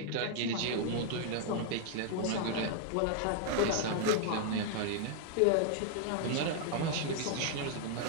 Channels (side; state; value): both; different; correlation 0.00